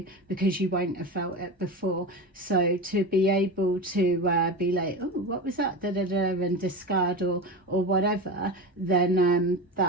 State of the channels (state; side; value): normal; both; correlation 0.24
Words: because you won't have felt it before. So to be able to be like, oh, what was that, da da da, and discard or whatever, then